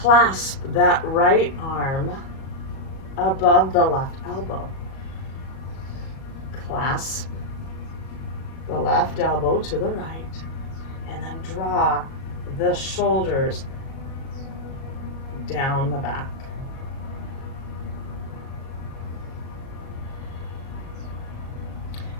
clasp that right arm above the left elbow. Clasp the left elbow to the right, and then draw the shoulders down the back.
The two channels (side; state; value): right; late; 37 ms